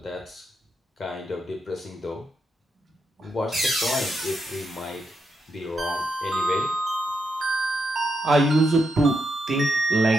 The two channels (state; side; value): normal; both; correlation 0.83